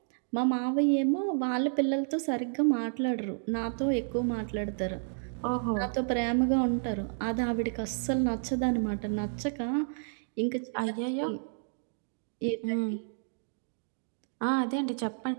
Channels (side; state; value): left; silent; digital silence